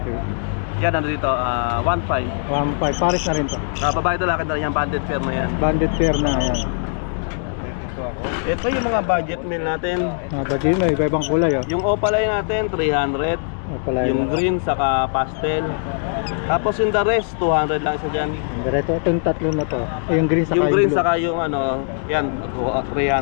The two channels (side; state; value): right; silent; digital silence